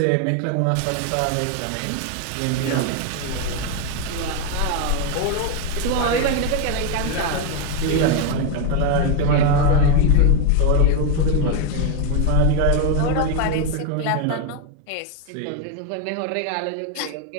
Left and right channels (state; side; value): different; both; correlation 0.01